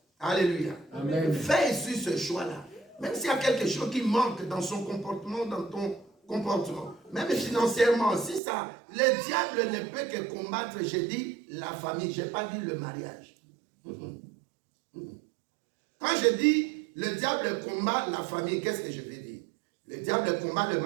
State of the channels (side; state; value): left; drops out; at 8.4 s